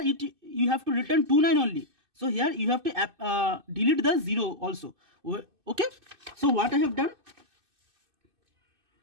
you have to return 2 9 only, so here you have to delete the 0 also. Okay, so what I have done,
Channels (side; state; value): left; late; 2.6 ms